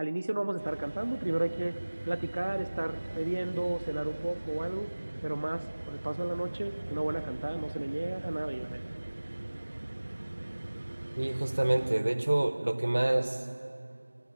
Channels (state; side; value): inverted; both; correlation -1.00